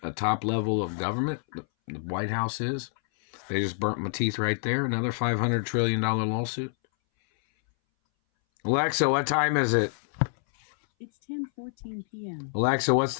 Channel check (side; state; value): right; silent; 60 dB below the other